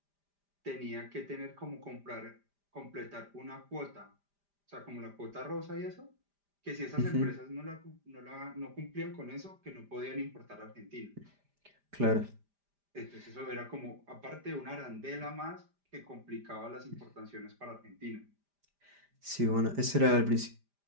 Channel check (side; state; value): left; late; 5.0 ms